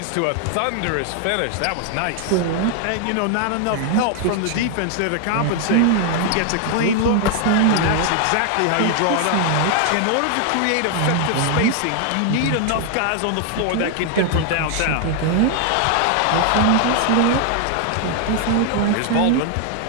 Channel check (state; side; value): different; both; correlation 0.00